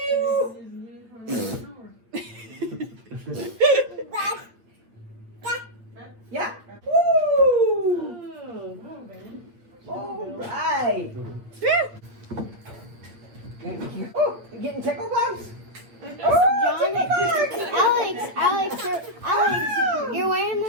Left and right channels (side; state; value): left; late; 8.9 ms